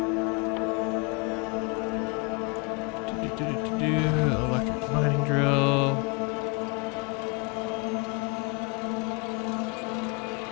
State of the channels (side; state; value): right; quieter; 31.5 dB